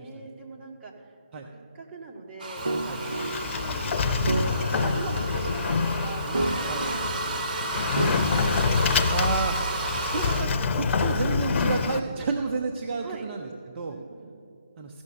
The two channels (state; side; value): inverted; both; correlation -0.63